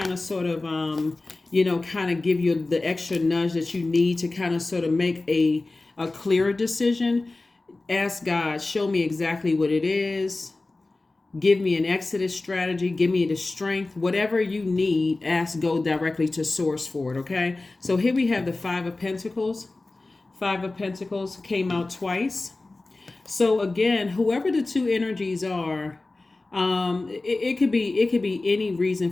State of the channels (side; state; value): right; quieter; 3.2 dB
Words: of sort of, kind of give you the extra nudge that you need to kind of sort of make a clearer decision, ask God, show me exactly what it is. Give me an exodus strategy. Give me the strength. Whatever you need, go directly to Source for it, okay? So here we have the Five of Pentacles. Five of Pentacles came out twice. So again, whoever the two energies are, it could be any reason